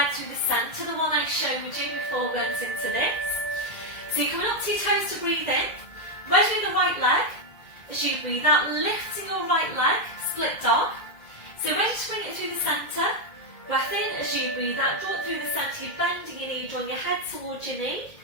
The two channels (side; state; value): right; late; 2.1 ms